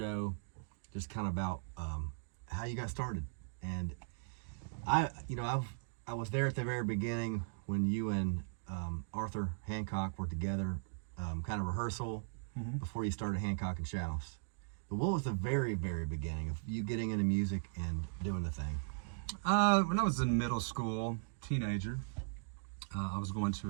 just kind of about how you got started. And I was there at the very beginning when you and Arthur Hancock were together, kind of rehearsal. Before you started Hancock and Shouse. But what was the very, very beginning of you getting into music and doing the thing? When I was in middle school, teenager, I was going to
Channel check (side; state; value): left; silent; digital silence